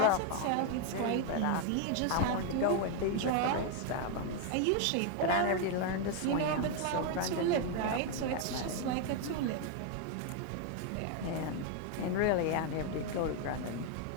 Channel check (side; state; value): both; different; correlation 0.01